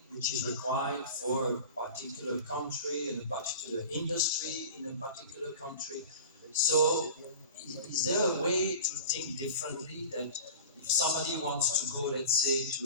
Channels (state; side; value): inverted; both; correlation -0.36